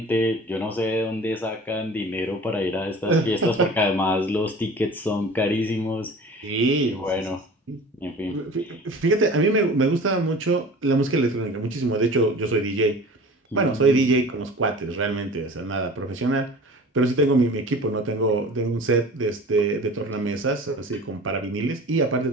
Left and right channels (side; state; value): both; normal; correlation 0.41